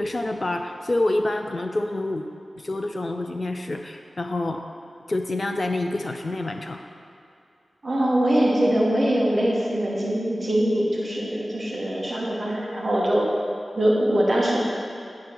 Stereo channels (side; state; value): both; normal; correlation 0.96